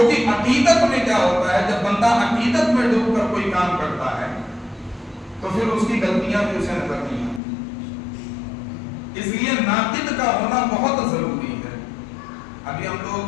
عقیدت میں کیا ہوتا ہے, جب بندہ عقیدت میں ڈوب کر کوئی کام کرتا ہے تو پھر اس کی غلطیاں بھی اسے نظر نہیں آتی. اس لیے ناقد کا ہونا بہت ضروری ہے. ابھی ہم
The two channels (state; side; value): drops out; right; at 7.4 s